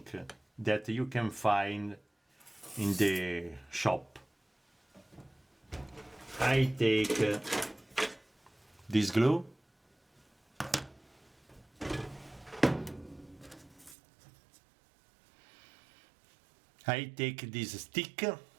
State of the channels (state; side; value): drops out; left; at 14.0 s